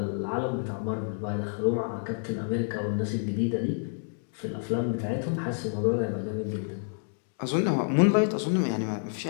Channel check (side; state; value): right; silent; digital silence